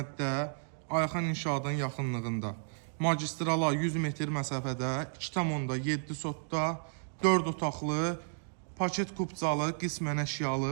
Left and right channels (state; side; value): silent; left; digital silence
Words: Ayxan İnşaatın yaxınlığında magistrala 100 metr məsafədə 2,7 sotda 4 otaqlı, paket kupcalı, qismən əşyalı